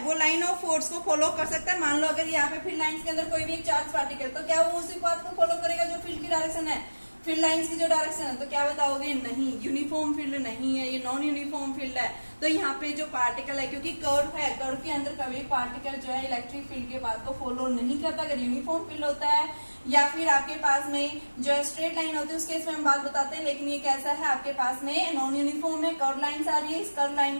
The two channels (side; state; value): both; inverted; correlation -1.00